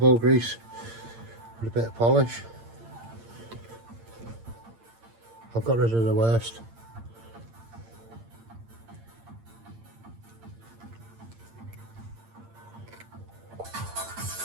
grease with a bit of polish. I've got rid of the worst.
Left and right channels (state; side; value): late; left; 8.8 ms